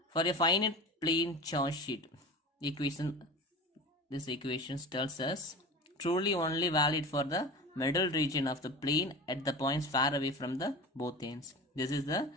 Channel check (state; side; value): normal; both; correlation 0.32